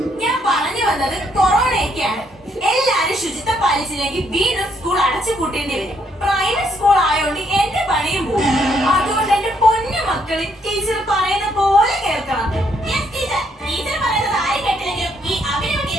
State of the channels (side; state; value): both; normal; correlation 0.72